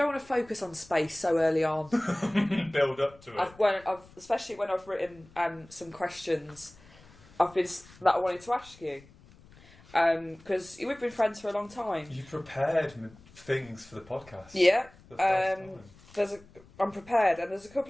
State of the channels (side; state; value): left; noise; rumble, 24 dB below the sound